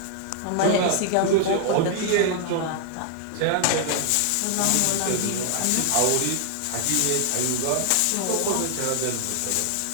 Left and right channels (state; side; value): different; both; correlation 0.00